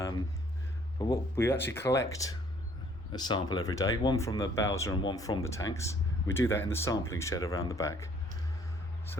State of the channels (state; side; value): normal; both; correlation 0.60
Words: what we actually collect a sample every day, one from the Bowser and one from the tanks. We do that in the sampling shed around the back.